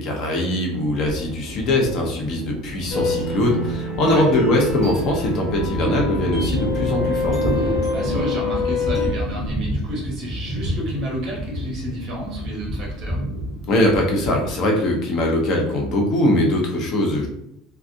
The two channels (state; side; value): normal; both; correlation 0.44